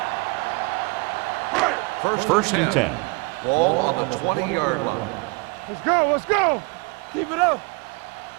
First and 10. Ball on the 20-yard line. Let's go, let's go. Keep it up.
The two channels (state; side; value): quieter; left; 28.1 dB